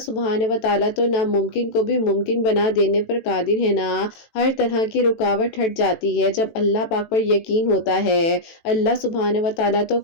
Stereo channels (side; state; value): right; late; 18 ms